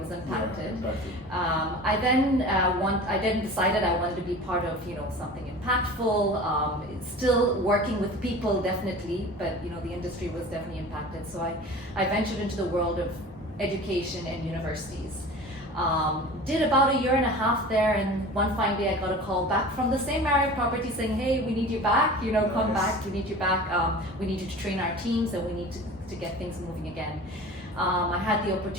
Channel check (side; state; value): both; normal; correlation 0.38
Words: impacted. Yeah, exactly. I then decided I wanted to be part of something impactful. Still working with people, definitely, but the industry was definitely impacted. So I ventured into the world of education and universities. Did about a year and a half there, and one fine day I got a call back from the same Marriott property saying, "Hey, we need you back. Come back. We need you back. We need you to train our teams, and we need to get things moving again." I had the